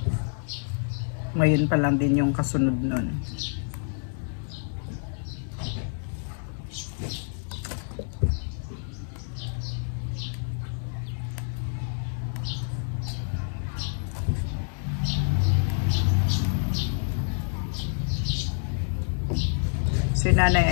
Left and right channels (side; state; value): right; silent; 60 dB below the other